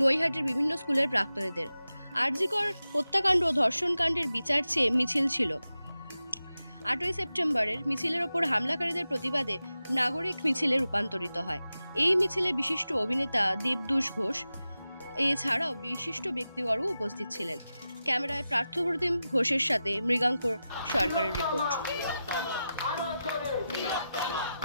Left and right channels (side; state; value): both; inverted; correlation -0.92